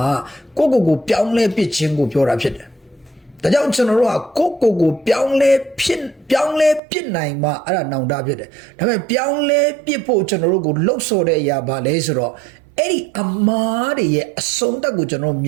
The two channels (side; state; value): left; drops out; at 6.8 s